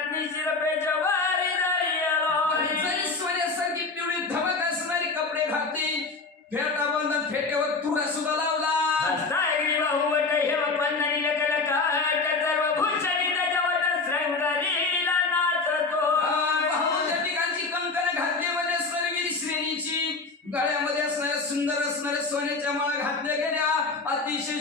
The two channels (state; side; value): quieter; right; 4.0 dB